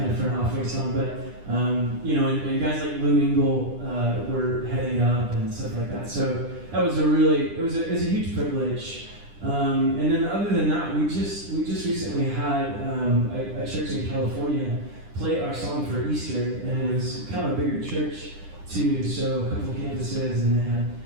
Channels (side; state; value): left; late; 10 ms